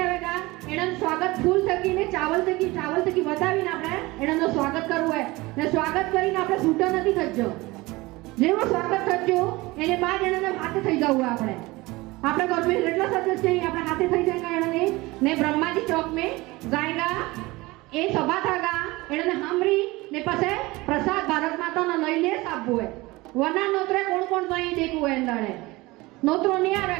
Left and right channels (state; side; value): quieter; left; 21.5 dB